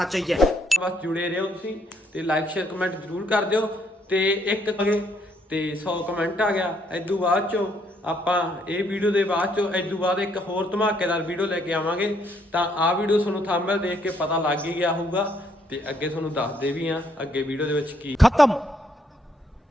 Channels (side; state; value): both; normal; correlation 0.71